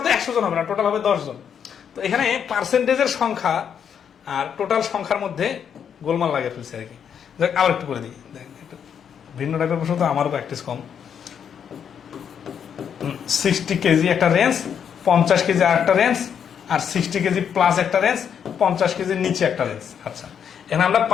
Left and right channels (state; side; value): quieter; right; 7.9 dB